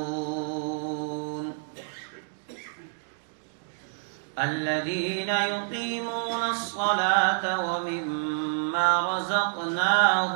الذين يقيمون الصلاة ومما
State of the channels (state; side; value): silent; left; digital silence